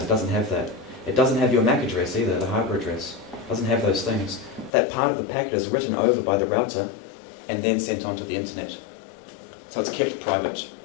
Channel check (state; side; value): drops out; right; at 4.7 s